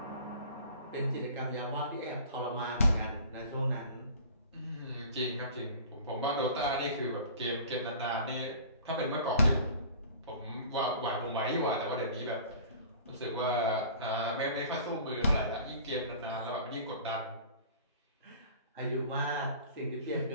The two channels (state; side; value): inverted; both; correlation -0.43